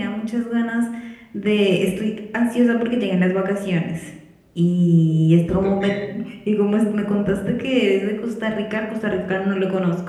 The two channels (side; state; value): both; identical; correlation 1.00